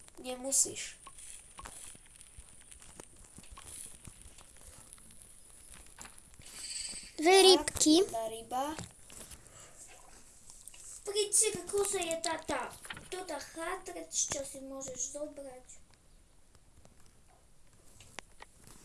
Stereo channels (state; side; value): identical; both; correlation 1.00